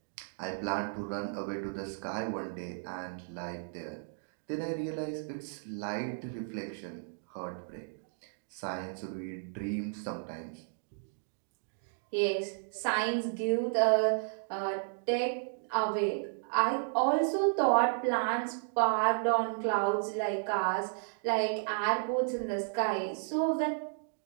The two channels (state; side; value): silent; left; digital silence